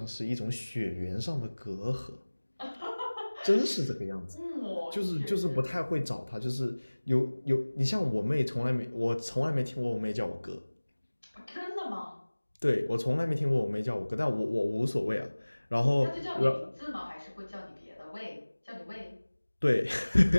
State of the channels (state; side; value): inverted; both; correlation -1.00